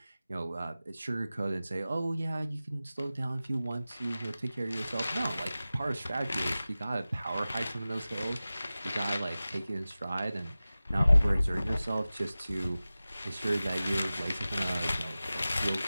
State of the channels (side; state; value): both; inverted; correlation -0.96